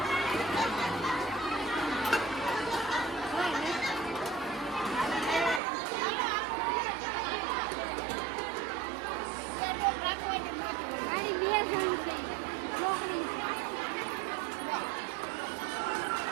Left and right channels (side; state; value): left; drops out; at 5.6 s